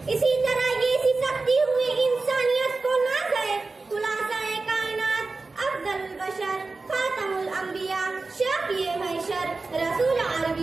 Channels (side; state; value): left; quieter; 3.7 dB